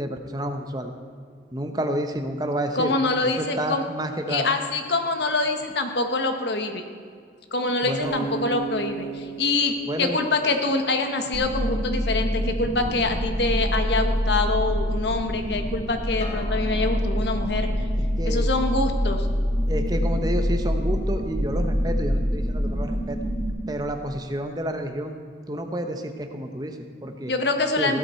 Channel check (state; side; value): normal; both; correlation 0.41